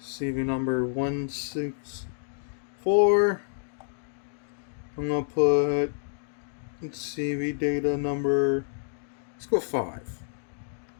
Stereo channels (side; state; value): right; silent; digital silence